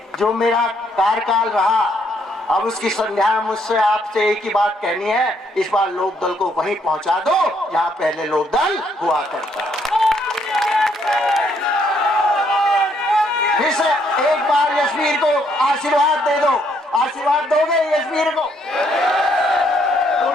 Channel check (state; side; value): normal; both; correlation 0.70